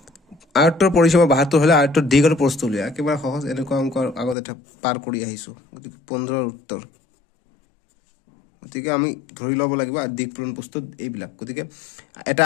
আয়তর পরিসীমা 72 হলে আয়তর দিক আর প্রস্থ লিয়া একেবারে সহজ এরকম অঙ্ক আগতে এটা পার কৰি আহিছো গতিকে 15 এৰ উত্তৰ গতিকে আমি ধৰি লব লাগিব আৰ দিক পূৰণ প্ৰস্থ এইবিলাক গতিকে এটা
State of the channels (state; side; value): drops out; right; at 4.4 s